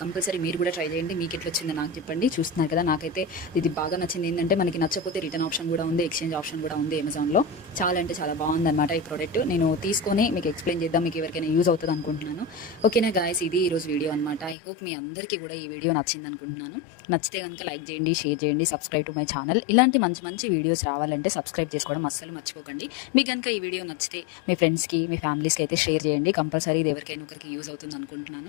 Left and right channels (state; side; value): drops out; right; at 14.6 s